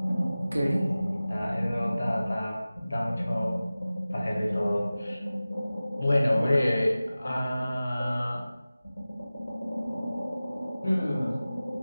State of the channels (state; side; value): inverted; both; correlation -0.97